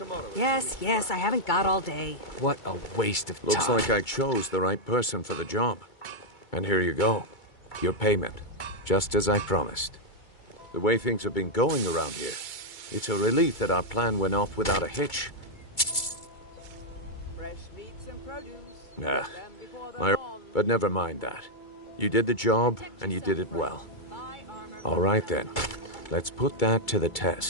Yes, I haven't got all day. What a waste of time. Looks like I chose the right person for the job. And here you go. Your payment. Just as I promised. The way things have been going around here, it's a relief that our plan went off without a hitch. Fresh meats and produce. Nah. But never mind that. You did the job, and you did it well. All right then. Let's put that to the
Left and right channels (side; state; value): right; late; 2.3 ms